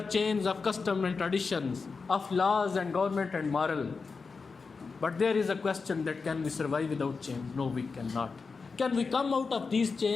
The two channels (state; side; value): quieter; right; 4.7 dB